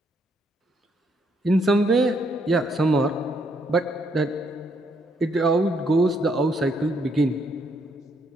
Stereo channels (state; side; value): normal; both; correlation 0.73